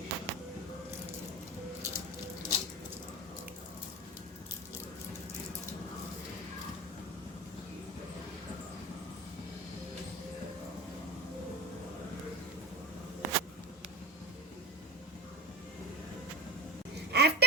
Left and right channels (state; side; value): normal; both; correlation 0.28